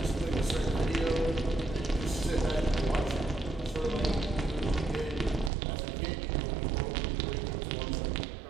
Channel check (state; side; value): drops out; left; at 5.5 s